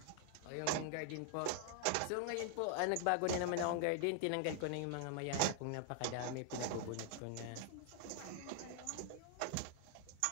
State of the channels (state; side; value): different; both; correlation 0.00